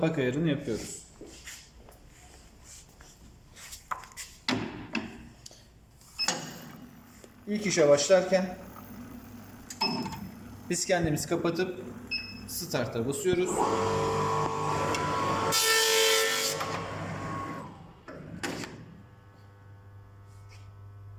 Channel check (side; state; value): both; identical; correlation 1.00